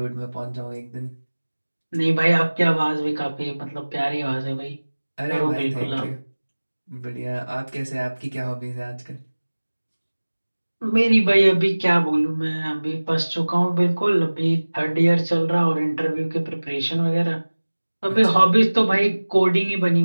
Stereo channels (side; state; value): both; inverted; correlation -1.00